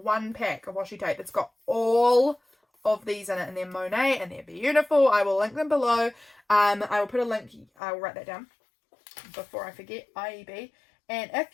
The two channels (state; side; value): drops out; right; at 7.7 s